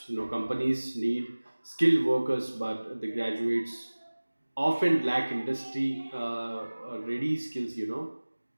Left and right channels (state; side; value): inverted; both; correlation -1.00